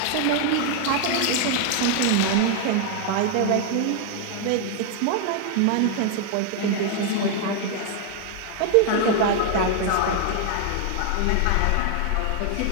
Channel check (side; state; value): both; different; correlation 0.00